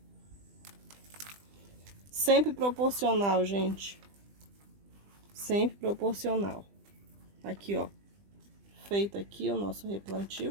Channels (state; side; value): late; left; 20 ms